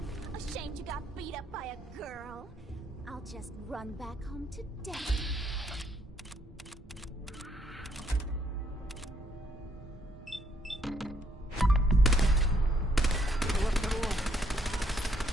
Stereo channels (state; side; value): normal; both; correlation 0.70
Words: Ashamed you got beat up by a girl. I'll just run back home to Daddy.